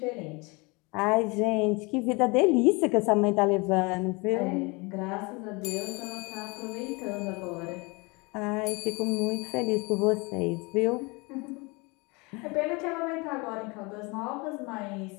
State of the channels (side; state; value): right; quieter; 27.5 dB